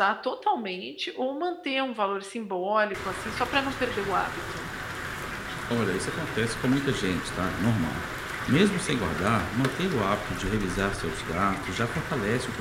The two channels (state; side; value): identical; both; correlation 1.00